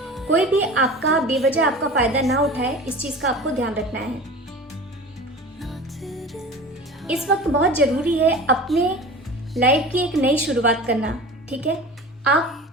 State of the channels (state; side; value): normal; both; correlation 0.36